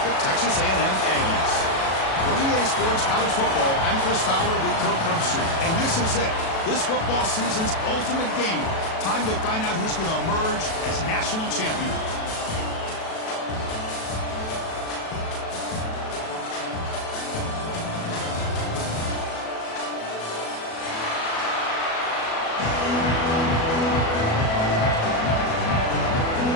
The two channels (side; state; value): right; late; 37 ms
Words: the Texas A&M Aggies. For EA Sports College Football, I'm Chris Fowler with Kirk Herbstreit, and this is it. This football season's ultimate game. Time to find out who's going to emerge as national champion.